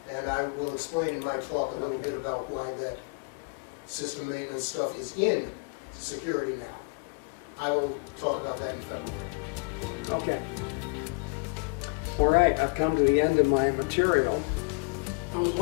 And I will explain in my talk a little bit about why that system maintenance stuff is in security now. I will talk about that in February. Okay. All right, I've come to the end of my material. That was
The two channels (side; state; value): right; quieter; 33.2 dB